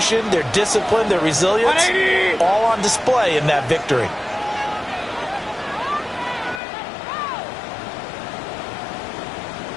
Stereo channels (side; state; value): right; drops out; at 6.6 s